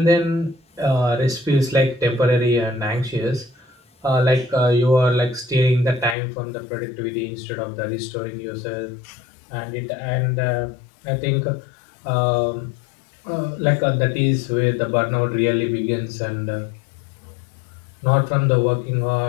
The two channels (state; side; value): drops out; right; at 6.2 s